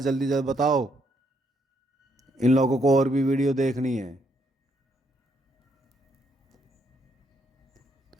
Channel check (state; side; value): normal; both; correlation 0.73